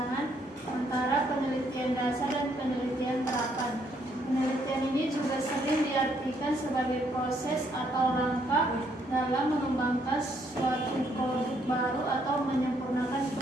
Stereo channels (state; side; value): normal; both; correlation 0.71